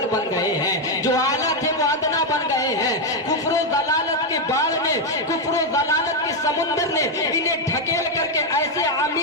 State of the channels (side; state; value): both; normal; correlation 0.03